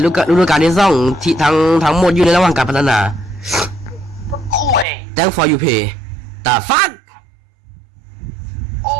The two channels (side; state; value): left; drops out; at 4.9 s